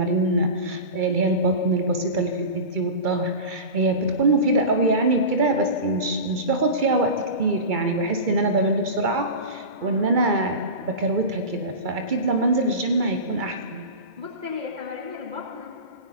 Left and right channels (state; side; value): late; left; 2.3 ms